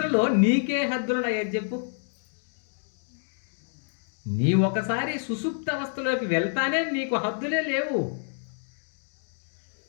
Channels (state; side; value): silent; right; digital silence